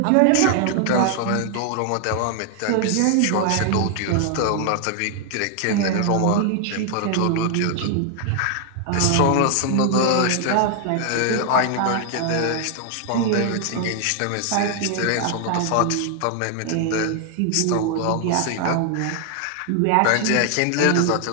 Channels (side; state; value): both; different; correlation 0.00